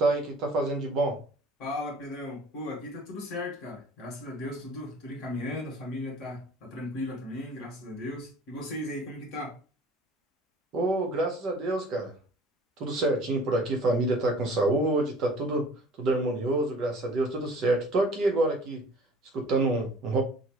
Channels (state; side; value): normal; both; correlation 0.48